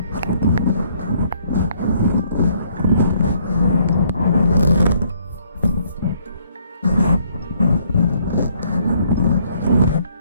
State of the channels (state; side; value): inverted; both; correlation -0.66